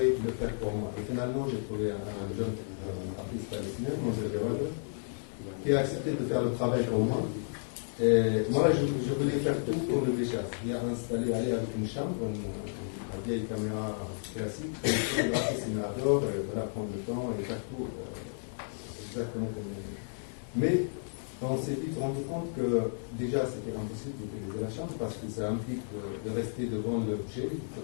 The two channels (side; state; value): right; silent; digital silence